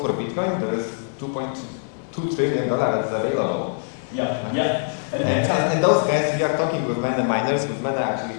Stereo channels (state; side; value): silent; right; digital silence